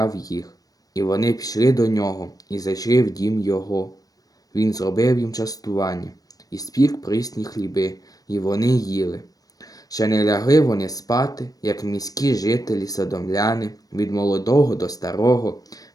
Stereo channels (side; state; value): right; late; 0.18 ms